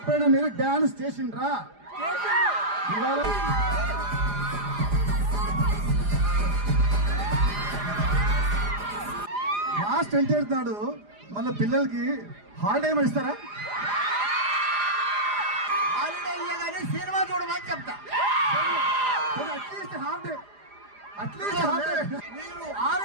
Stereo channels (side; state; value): left; late; 4.9 ms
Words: మీరు డాన్స్ చేసిండ్రా? లాస్ట్ ఎంటర్ నాడు మళ్ళీ పిల్లలకి హాలిడే ఏమైనా ఇస్తారా? హాలిడే ఇయ్యగానే సినిమా చూడమని చెప్తా. At least half day, at least half day. మీరు